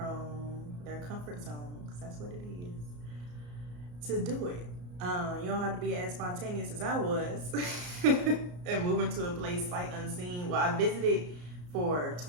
their comfort zone, because that's what it is, to do it. You don't have to be as spontaneous as I was and moving to a place sight unseen. Well, I visited for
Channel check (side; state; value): left; late; 34 ms